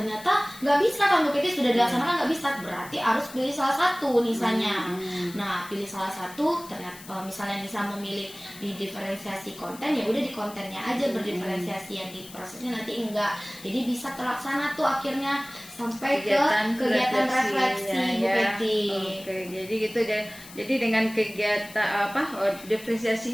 nggak bisa kan Bu Keti, sudah dilaksanakan nggak bisa, berarti harus pilih salah satu Nisanya. Nah, pilih salah satu, ternyata misalnya Nisa memilih di diferensiasi konten, ya udah di kontennya aja berdiferensiasi, yang di prosesnya nanti enggak. Jadi bisa terlaksana tuh akhirnya sampai ke kegiatan refleksi Bu Keti. Oke, jadi gitu deh. Jadi dengan kegiatan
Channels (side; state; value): left; noise; hiss, 17 dB below the sound